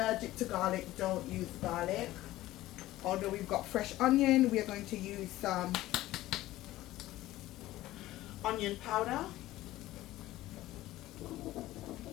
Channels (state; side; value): quieter; right; 16.1 dB